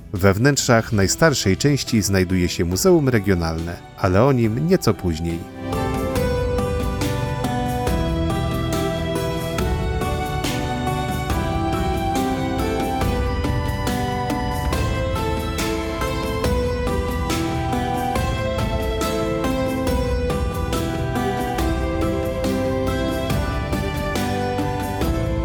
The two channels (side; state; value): both; identical; correlation 1.00